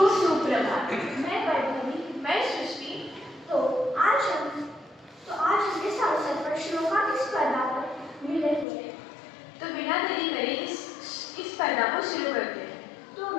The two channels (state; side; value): drops out; right; at 8.7 s